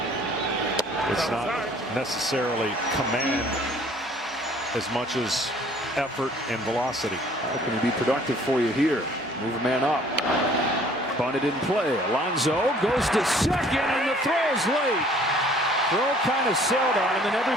It's not necessarily command as much as effort and velocity. How can he be productive for you here? Move a man up. Bunted in play. Alonso goes to second, and the throw's late. Throw kind of sailed on him, and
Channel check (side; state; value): both; normal; correlation 0.56